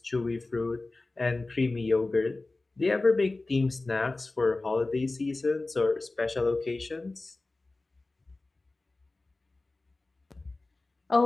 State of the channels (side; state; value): right; quieter; 3.2 dB